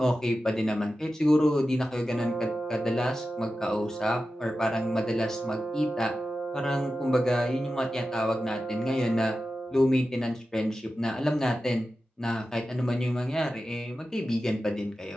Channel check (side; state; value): both; normal; correlation 0.93